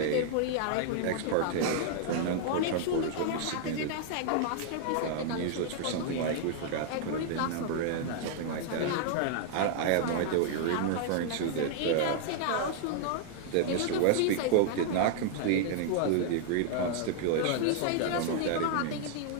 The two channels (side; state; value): both; different; correlation -0.01